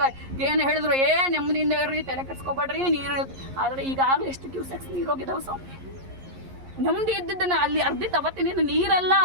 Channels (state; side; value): late; left; 11 ms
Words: ಏನು ಹೇಳಿದ್ರು, ನೆಮ್ಮದಿಯಿಂದ ಇರ್ರಿ, ತಲೆ ಕೆಡ್ಸ್ಕೊಬೇಡ್ರಿ, ನೀರು. ಆದರೆ ಈಗಾಗಲೇ ಎಷ್ಟು ಕ್ಯೂಸೆಕ್ಸ್ ನೀರು ಹೋಗಿದ್ದಾವೆ ಸ್ವಾಮಿ. ನೆಮ್ಮದಿ ಇದ್ದಿದ್ದನ್ನ ಅಲ್ಲಿ ಅರ್ಧಿತ ಅವತ್ತಿನ ನೀರೆಲ್ಲ